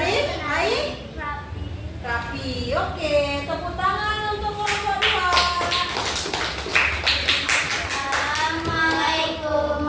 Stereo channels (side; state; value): both; identical; correlation 1.00